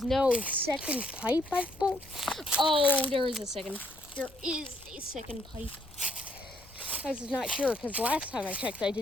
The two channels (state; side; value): noise; left; rumble, 24 dB below the sound